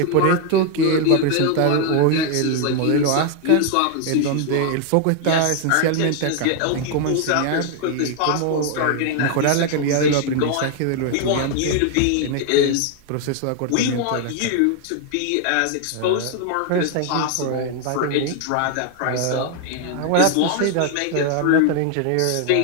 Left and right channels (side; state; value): both; different; correlation 0.00